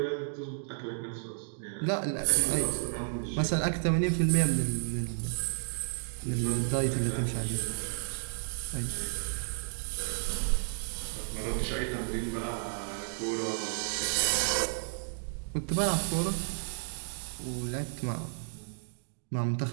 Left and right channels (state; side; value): silent; left; digital silence